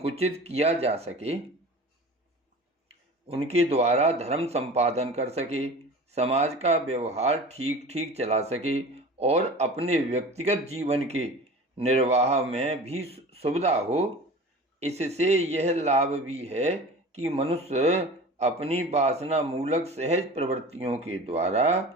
किया जा सके, उनके द्वारा धर्म संपादन कर सके, समाज का व्यवहार ठीक ठीक चला सके और अपने व्यक्तिगत जीवन के निर्वाह में भी सुविधा हो। इससे यह लाभ भी है कि मनुष्य अपनी वासना मूलक सहज प्रवृत्तियों के द्वारा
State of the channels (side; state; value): both; normal; correlation 0.38